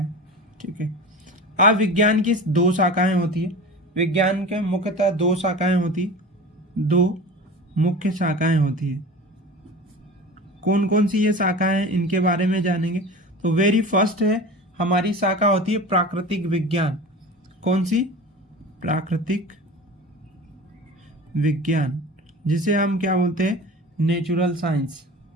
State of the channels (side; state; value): both; normal; correlation 0.34